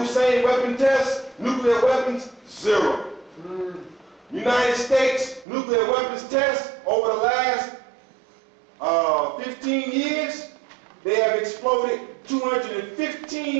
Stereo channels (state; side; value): drops out; left; at 5.5 s